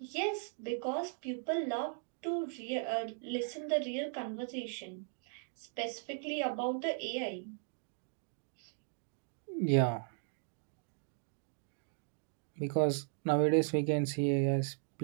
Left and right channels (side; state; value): left; silent; 53 dB below the other